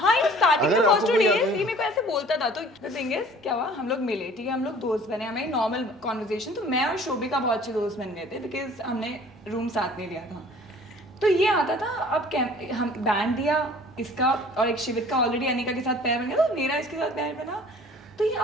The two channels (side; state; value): both; normal; correlation 0.50